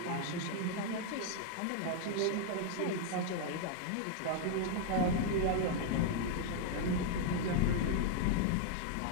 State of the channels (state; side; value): different; both; correlation 0.00